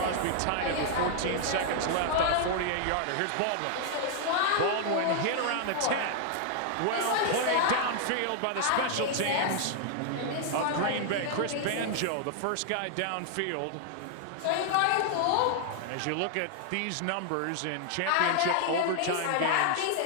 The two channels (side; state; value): both; different; correlation 0.00